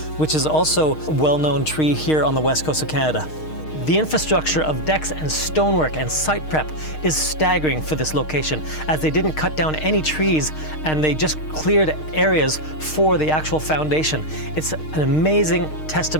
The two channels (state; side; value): late; right; 6.5 ms